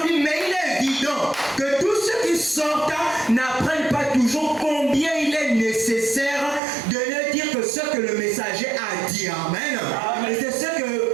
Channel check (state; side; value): drops out; left; at 6.6 s